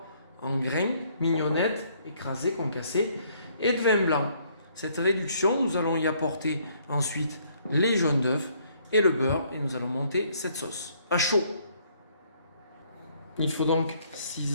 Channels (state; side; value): inverted; both; correlation -0.65